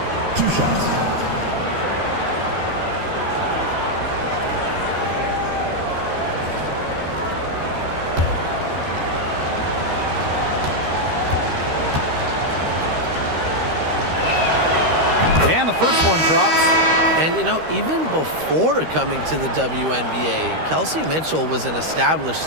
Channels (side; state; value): left; late; 13 ms